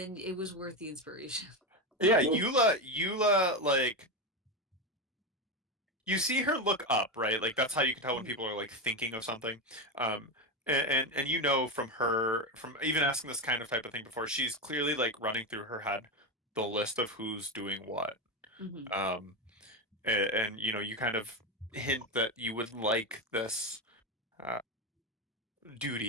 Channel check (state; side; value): normal; both; correlation 0.13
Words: it was worth the inspiration. Yeah, Eula, like you see her look up, right? Like that's how you can tell when people are like thinking of something. Um, and you know from her, from even asking this kind of type of thing before, she's clearly like running through her head the list of who's doing what. Mhm. Um, and you kind of hint that you would like this uh,